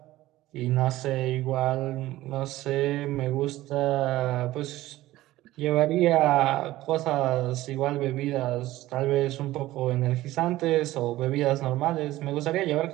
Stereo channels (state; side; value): quieter; left; 16.3 dB